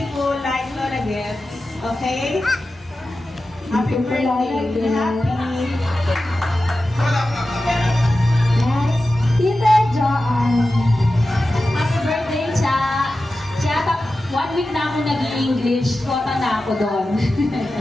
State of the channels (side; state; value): both; normal; correlation 0.93